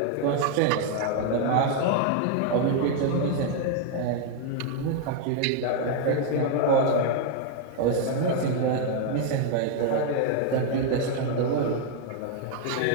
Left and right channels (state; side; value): different; both; correlation 0.00